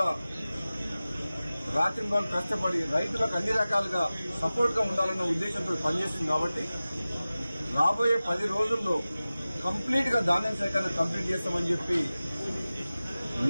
రాత్రింబాలు కష్టపడి రైతులకు అన్ని రకాలుగా సపోర్ట్ గా ఉండాలన్న ఉద్దేశంతో పనిచేస్తుంది. కాబట్టి రాబోయే 10 రోజుల్లో కంప్లీట్ గా ధాన్యం సేకరణ కంప్లీట్ చేస్తామని చెప్పి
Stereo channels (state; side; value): inverted; both; correlation -0.97